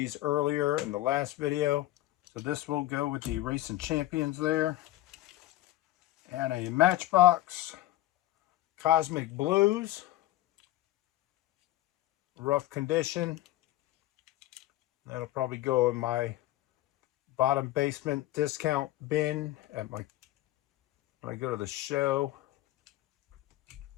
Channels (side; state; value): right; quieter; 15.8 dB